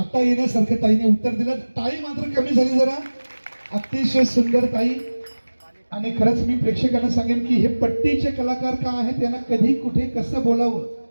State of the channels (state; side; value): inverted; both; correlation -1.00